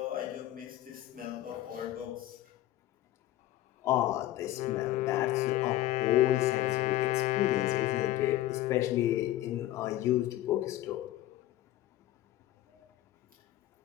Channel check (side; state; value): right; quieter; 14.7 dB